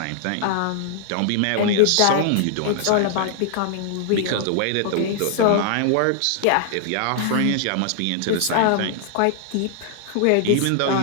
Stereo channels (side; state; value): both; different; correlation -0.01